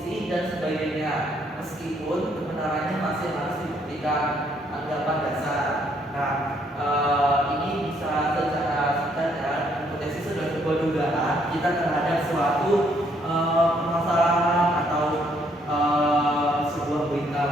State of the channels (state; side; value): normal; both; correlation 0.69